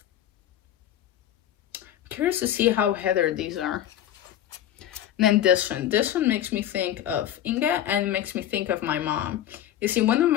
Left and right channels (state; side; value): quieter; right; 11.6 dB